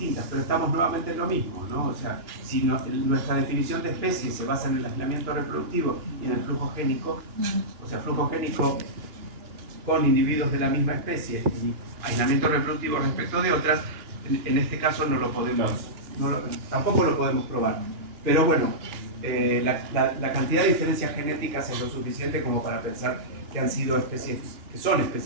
pero estamos nuevamente en lo mismo, ¿no? O sea, si nuestra definición de especie se basa en el aislamiento reproductivo y en el flujo génico, o sea, flujo génico con individuos de la misma especie y aislamiento reproductivo respecto de otras, en este caso tampoco lo podemos probar. Pero bueno, la cantidad de diferencias genéticas es lo suficiente como para pensar que han sido especies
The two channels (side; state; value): left; late; 2.9 ms